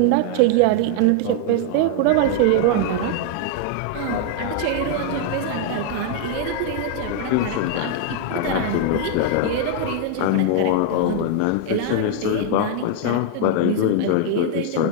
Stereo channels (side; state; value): both; different; correlation 0.00